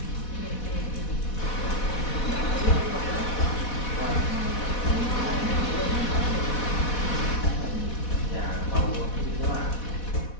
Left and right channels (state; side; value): late; right; 4.1 ms